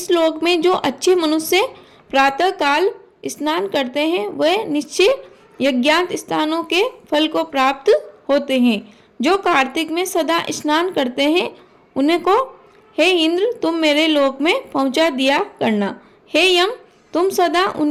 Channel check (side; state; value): both; identical; correlation 1.00